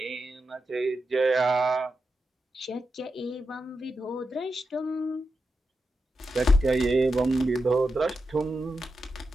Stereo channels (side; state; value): both; normal; correlation 0.88